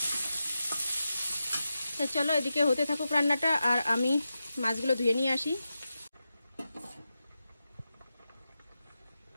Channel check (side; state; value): both; inverted; correlation -0.90